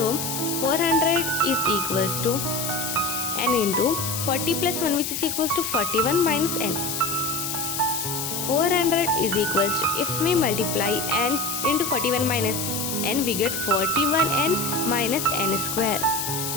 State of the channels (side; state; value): left; noise; hiss, 3 dB below the sound